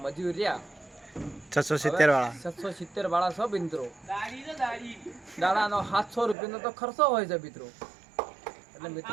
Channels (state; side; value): drops out; left; at 6.4 s